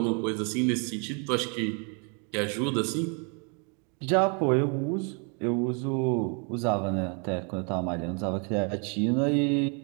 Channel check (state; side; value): quieter; left; 37.3 dB